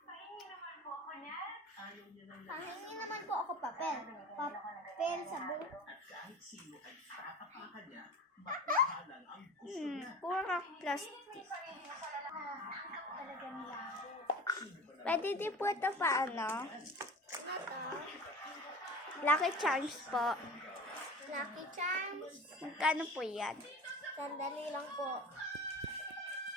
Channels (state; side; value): normal; both; correlation 0.36